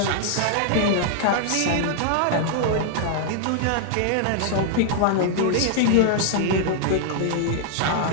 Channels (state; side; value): different; both; correlation 0.00